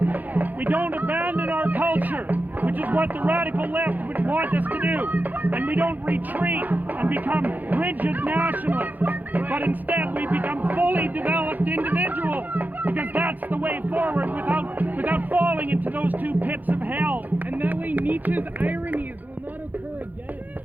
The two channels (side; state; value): left; late; 0.083 ms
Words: we don't abandon our culture, which is what the radical left would want us to do. And we don't retreat and become rigid nationalists, but instead we become fully developed individuals, because that's the way forward without falling into those two pits of hell. And that way Nietzsche's ironies will not occur again.